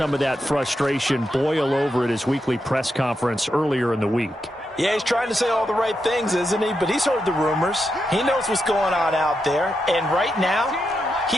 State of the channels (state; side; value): normal; both; correlation 0.85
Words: of that frustration boil over at his weekly press conference earlier in the week. Yeah, he's trying to say all the right things, isn't he? But he's heard the rumors. He knows what's going on out there. And right now,